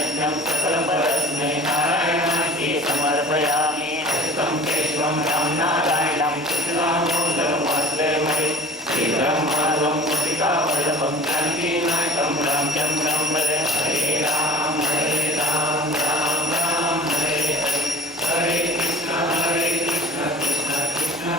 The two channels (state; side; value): normal; both; correlation 0.43